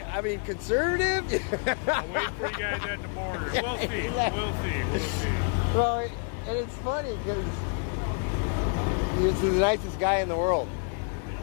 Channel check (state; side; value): quieter; right; 35.8 dB